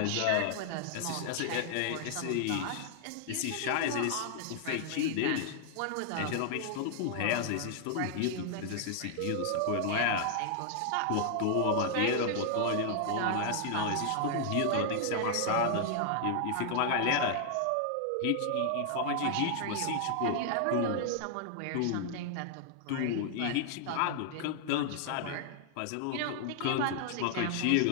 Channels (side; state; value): both; different; correlation 0.00